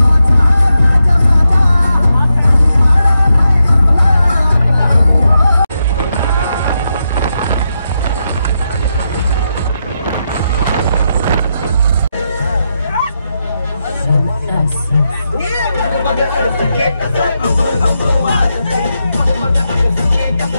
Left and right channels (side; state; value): both; inverted; correlation -0.85